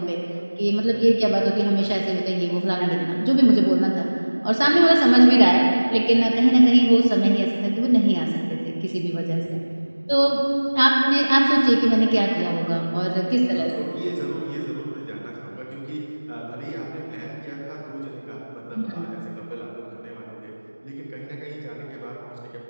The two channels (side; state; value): both; inverted; correlation -1.00